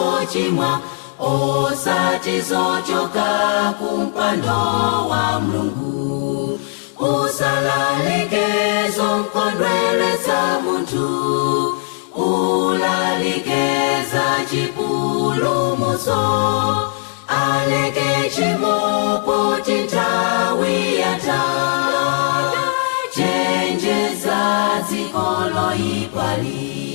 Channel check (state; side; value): silent; right; digital silence